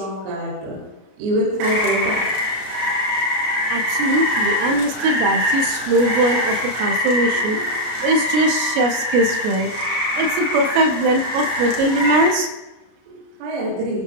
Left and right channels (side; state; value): left; late; 33 ms